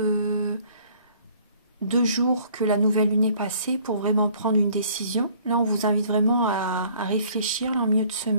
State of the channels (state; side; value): inverted; both; correlation -0.57